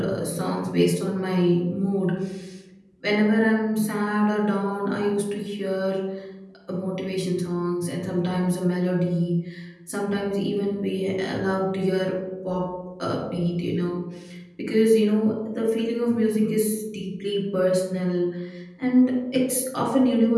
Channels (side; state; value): both; identical; correlation 1.00